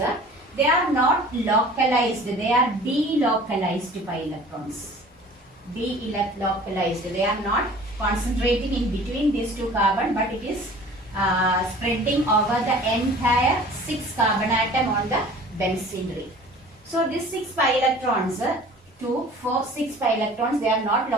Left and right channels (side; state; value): both; normal; correlation 0.46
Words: they are not localized. They are delocalized pi electrons. Delocalized. They are not concentrating in between these 2 carbon, but it is spreading over the entire 6 carbon atom on the benzene ring. So these 6 pi electrons, 2, 4, 6 pi electrons, they are not